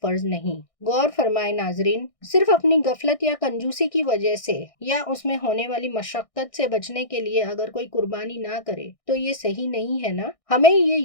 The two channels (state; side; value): late; right; 1.6 ms